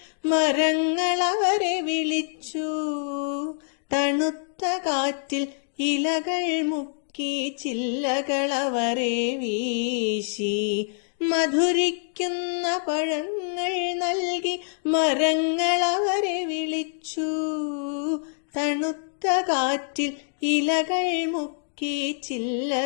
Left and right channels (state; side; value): silent; right; digital silence